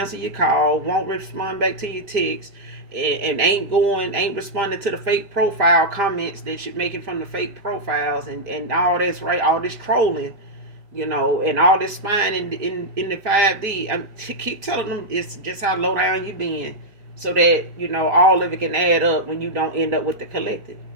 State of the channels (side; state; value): left; late; 5.0 ms